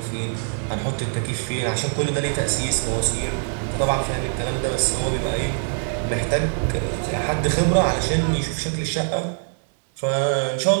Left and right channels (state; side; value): silent; left; 63 dB below the other